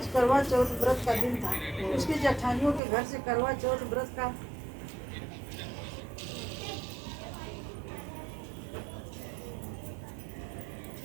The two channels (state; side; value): drops out; left; at 2.8 s